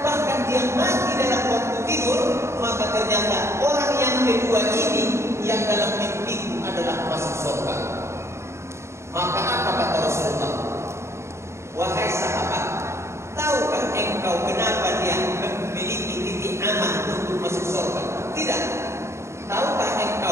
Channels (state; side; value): late; left; 0.13 ms